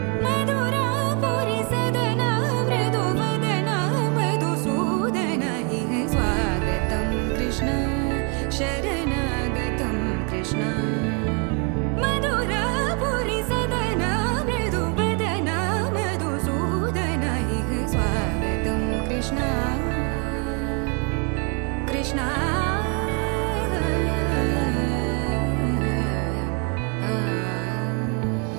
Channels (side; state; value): left; quieter; 35.2 dB